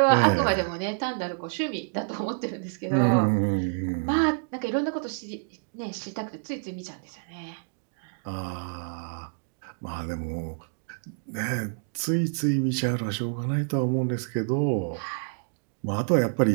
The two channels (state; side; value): silent; left; digital silence